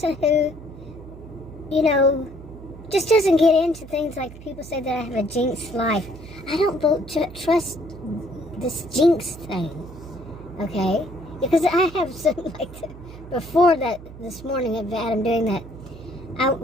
who, just doesn't get into things like people say that I have a jinxed life. I don't trust this jinx thing, okay? Because I have some, before that, this morning of Adam doing that, I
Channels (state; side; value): noise; right; hum, 16 dB below the sound